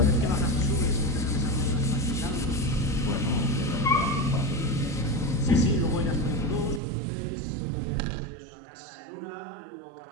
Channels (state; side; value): drops out; left; at 6.8 s